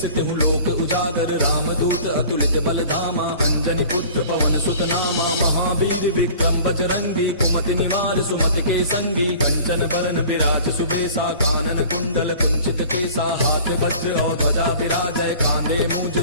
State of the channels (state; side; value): inverted; both; correlation -0.45